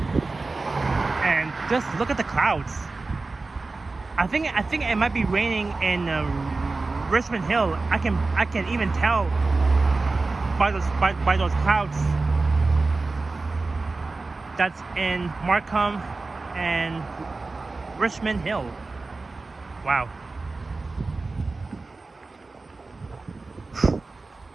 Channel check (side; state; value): left; quieter; 3.6 dB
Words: And just look at the clouds. I think it might be raining in Richmond Hill. I can even tell by those clouds that's in Markham and Richmond Hill. Wow.